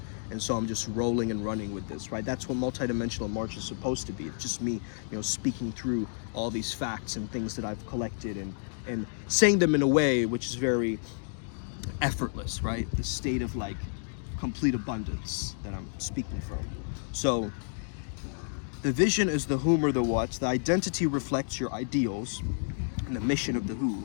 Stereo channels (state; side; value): silent; right; digital silence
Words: And so I'm just rolling and running with this, right? That's what multidimensional March is supposed to be. It's just me, speaking through all these facts and things that I've collected and saying them in a way which is very effortless, right? The state of like complete abundance that I'm speaking from. So the vision is the whom or the what. The identity reflects your ideals and the mission of the